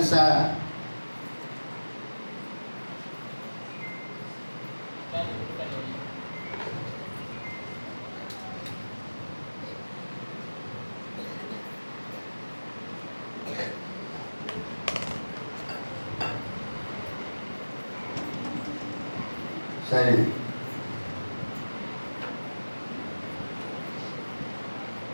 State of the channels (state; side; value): inverted; both; correlation -1.00